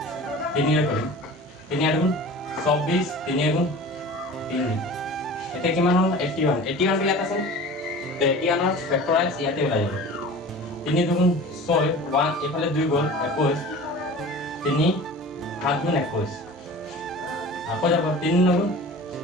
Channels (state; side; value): normal; both; correlation 0.39